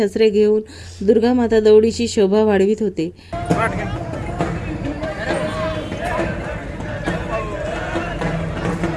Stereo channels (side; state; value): both; identical; correlation 1.00